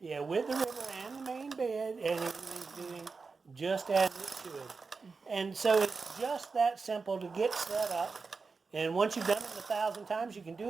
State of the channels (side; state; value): left; quieter; 4.6 dB